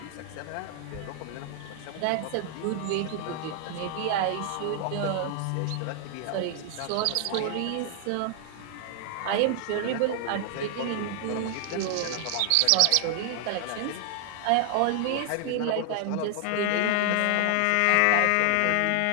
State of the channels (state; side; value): different; both; correlation 0.00